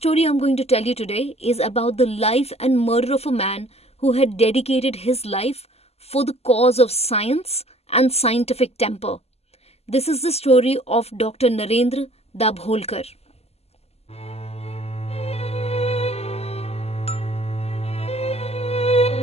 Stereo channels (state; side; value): late; right; 0.30 ms